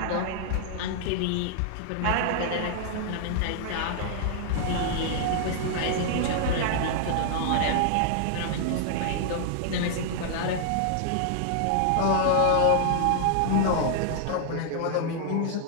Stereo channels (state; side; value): different; both; correlation -0.01